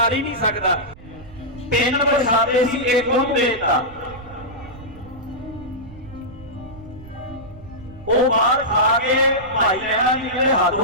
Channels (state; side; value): noise; right; rumble, 19 dB below the sound